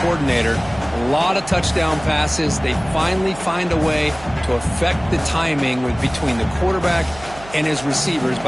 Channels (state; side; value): noise; right; hum, 18 dB below the sound